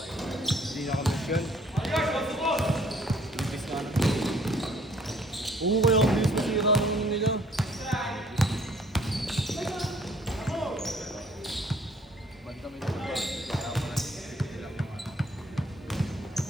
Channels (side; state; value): both; normal; correlation 0.60